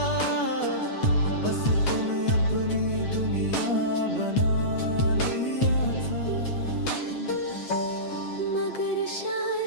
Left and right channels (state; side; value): late; right; 8.3 ms